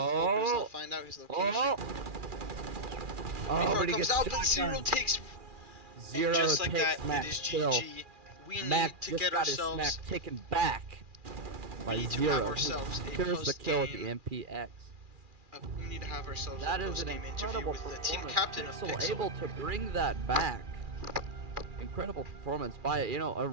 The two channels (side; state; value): left; late; 2.4 ms